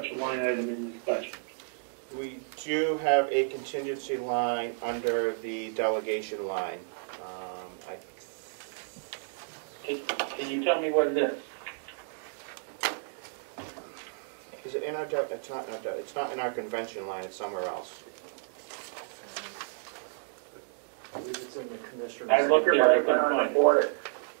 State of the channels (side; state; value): left; silent; digital silence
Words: a line item in this budget? We do have a contingency line under the delegation line. Can you tell me what it is? Is it in our? It's not in our. It's not in our convention line. It's somewhere else. I believe it's in the commissioner's. I looked there, I couldn't under find it. audit.